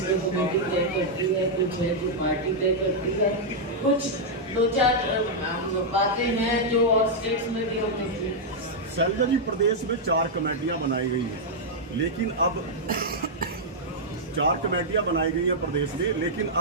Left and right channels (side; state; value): both; normal; correlation -0.05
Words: कमेटी तय करती है, कुछ है जो पार्टी तय करती है, कुछ 2-4 बातें हैं जो और स्टेट्स में भी हमने की। शैलजा जी, प्रदेश में 4 कमेटियां बनाई गई हैं, लेकिन अब 4 कमेटियां बनाई गई हैं प्रदेश में, लेकिन